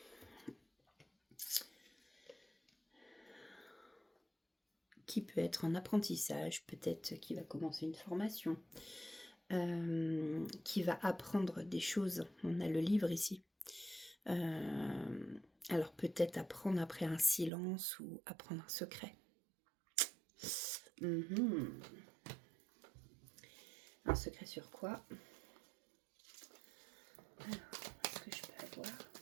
Qui peut être en apprentissage, peut-être qui va commencer une formation, qui va apprendre des choses. On a le livre ici. Alors peut-être apprendre après un silence ou apprendre un secret. Un secret sur quoi? Alors, est-ce que je peux avoir?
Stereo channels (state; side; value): drops out; left; at 17.5 s